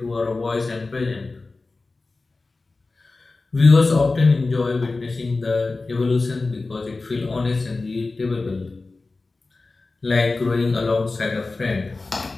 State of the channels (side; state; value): right; quieter; 3.6 dB